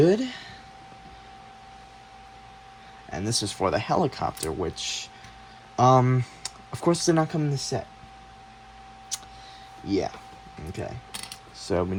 And this is for the helicopter, which, of course, did not come in the set. Yeah. Okay. So we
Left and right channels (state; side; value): identical; both; correlation 1.00